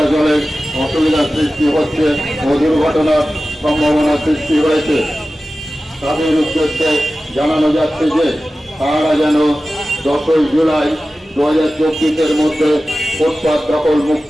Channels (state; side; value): normal; both; correlation 0.95